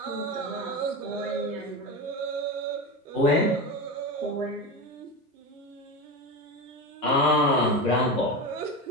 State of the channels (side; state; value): both; normal; correlation 0.21